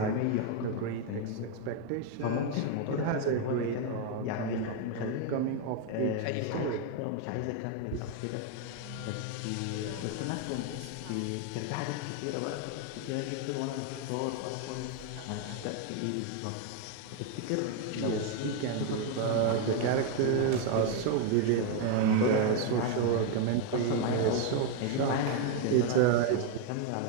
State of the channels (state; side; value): different; both; correlation 0.01